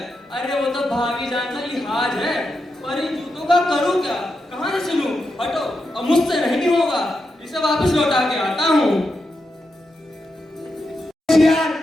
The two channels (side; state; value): both; normal; correlation 0.86